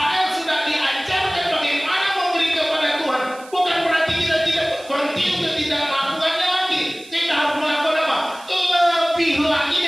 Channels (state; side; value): noise; right; hiss, 21 dB below the sound